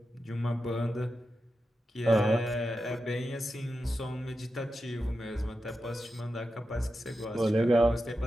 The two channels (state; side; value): normal; both; correlation 0.90